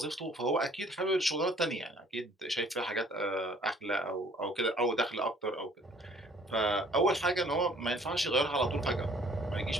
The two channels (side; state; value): both; normal; correlation 0.56